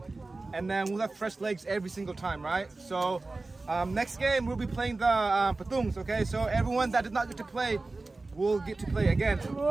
And then we'll have fresh legs every single time, right? So Next game we'll be playing the patungs. Okay, so everyone that did not get to play will get to play again.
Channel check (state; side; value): quieter; left; 3.4 dB